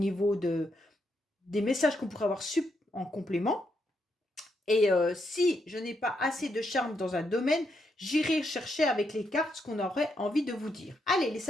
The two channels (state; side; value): normal; both; correlation 0.79